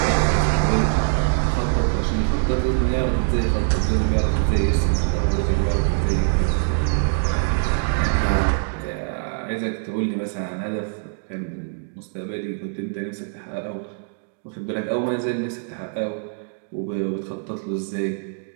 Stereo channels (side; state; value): left; silent; digital silence